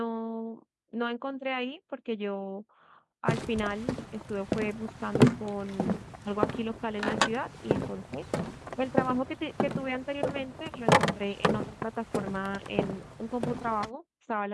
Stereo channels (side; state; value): both; identical; correlation 1.00